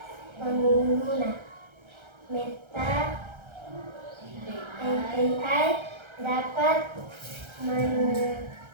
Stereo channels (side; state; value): left; late; 1.3 ms